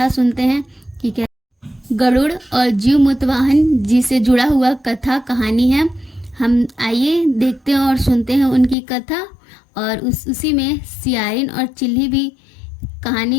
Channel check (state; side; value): drops out; right; at 8.8 s